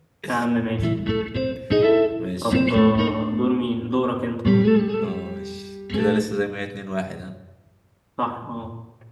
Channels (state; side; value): identical; both; correlation 1.00